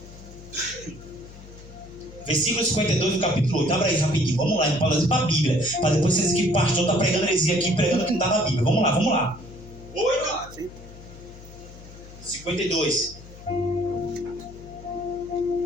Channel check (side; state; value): left; noise; hum, 18 dB below the sound